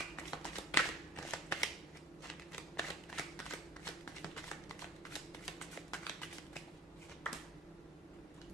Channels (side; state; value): both; normal; correlation 0.41